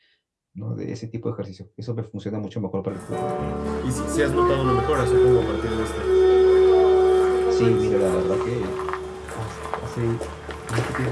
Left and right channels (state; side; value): identical; both; correlation 1.00